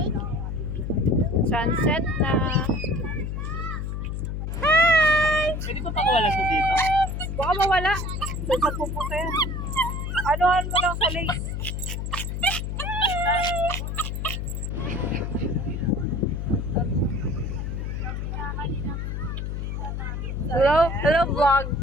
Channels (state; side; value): noise; left; hum, 4 dB below the sound